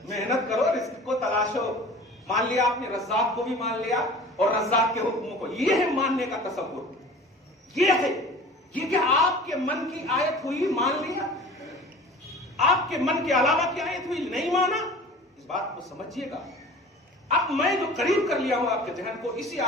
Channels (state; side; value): normal; both; correlation 0.42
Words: محنت کرو، رزق کو تلاشو۔ مان لیا آپ نے، رزاق کو بھی مان لیا اور رزاق کے حکموں کو، یہ ہے ماننے کا تصور، یہ ہے۔ یہ کہ آپ کے من کی آیت ہوئی مان لیا، آپ کے من کے علاوہ کی آیت ہوئی نہیں مانا، اس بات کو سمجھیے گا۔ اب میں جو قریب کر لیا ہوں آپ کے ذہن کو، اسی